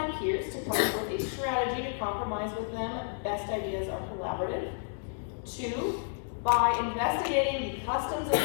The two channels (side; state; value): right; silent; digital silence